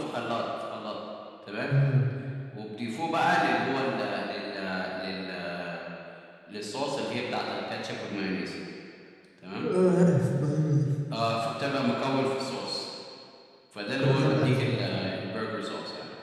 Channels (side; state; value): both; identical; correlation 1.00